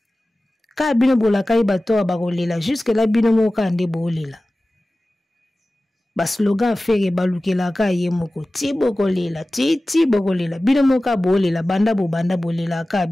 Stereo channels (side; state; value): both; normal; correlation 0.96